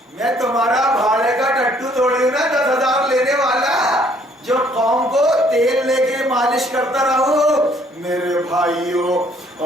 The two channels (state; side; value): normal; both; correlation 0.63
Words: میں تمہارا بھاڑے کا ٹٹو توڑی ہوں نا, 10,000 لینے والا, جو قوم کو تیل لے کے مالش کرتا رہو. میرے بھائیوں